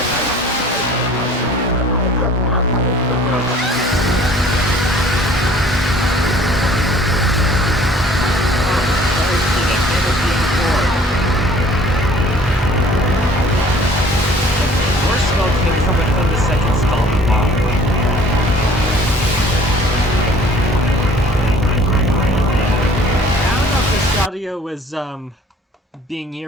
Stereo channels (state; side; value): normal; both; correlation 0.53